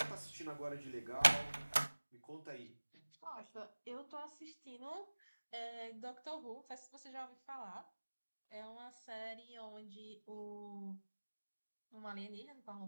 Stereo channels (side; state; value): both; inverted; correlation -1.00